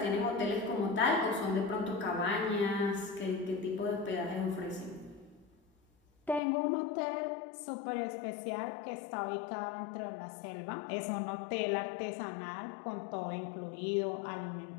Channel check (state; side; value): drops out; right; at 6.4 s